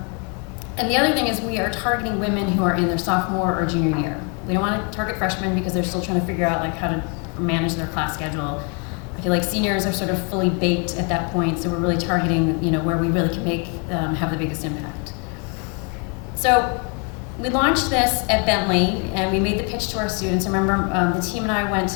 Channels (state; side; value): quieter; right; 35.8 dB